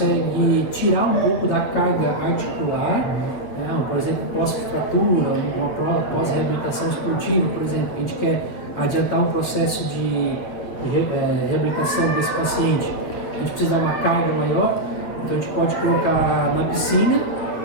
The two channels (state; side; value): late; right; 9.2 ms